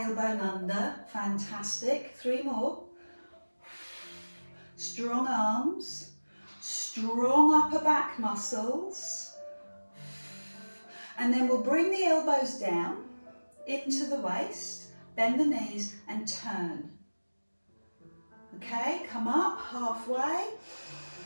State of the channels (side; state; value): both; inverted; correlation -1.00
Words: under. Fantastic. 3 more. Strong arms, strong upper back muscles. And then we'll bring the elbows down into the waist. Bend the knees and turn. Okay, come up halfway.